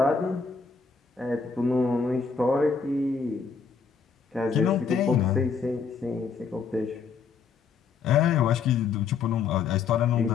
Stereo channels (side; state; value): right; quieter; 5.6 dB